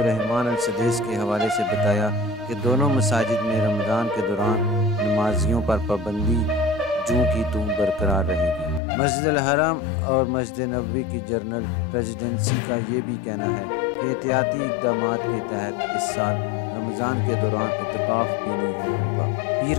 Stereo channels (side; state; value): right; drops out; at 8.8 s